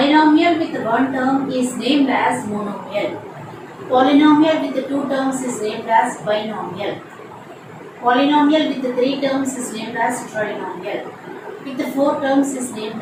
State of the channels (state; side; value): identical; both; correlation 1.00